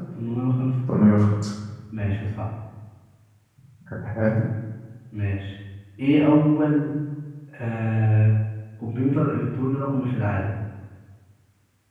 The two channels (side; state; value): both; identical; correlation 1.00